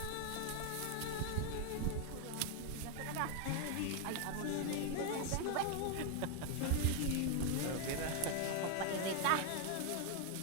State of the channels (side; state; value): both; different; correlation 0.01